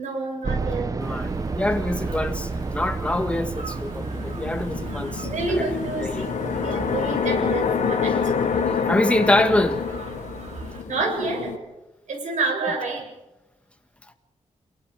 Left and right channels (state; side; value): normal; both; correlation 0.62